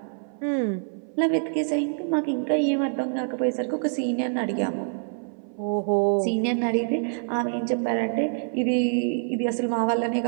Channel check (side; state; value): left; silent; 58 dB below the other